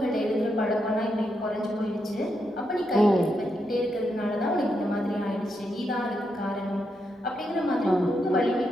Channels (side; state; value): both; normal; correlation 0.82